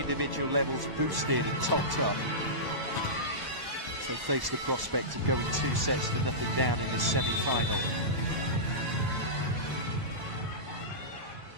levels boosted and topped up. So face the prospect of going 2 sets to nothing down in this semi-final.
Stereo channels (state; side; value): late; left; 1.0 ms